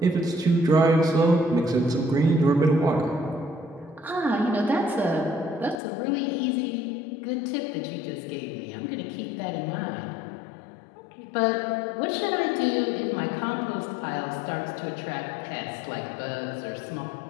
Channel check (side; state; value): right; drops out; at 5.8 s